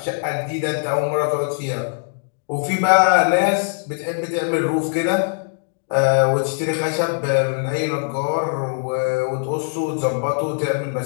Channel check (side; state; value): right; silent; digital silence